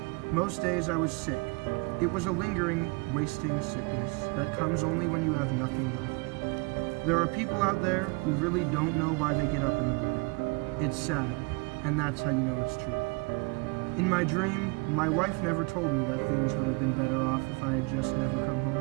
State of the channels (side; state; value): left; quieter; 29.9 dB